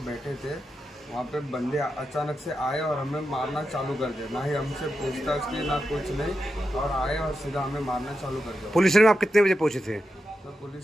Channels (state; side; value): normal; both; correlation 0.88